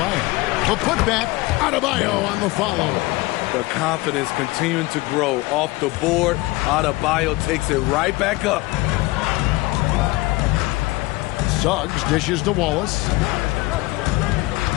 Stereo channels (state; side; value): quieter; right; 21.3 dB